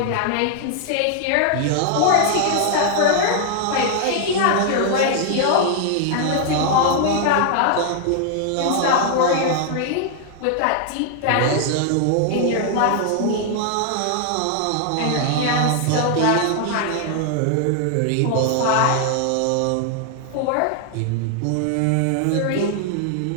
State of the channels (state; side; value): different; both; correlation 0.00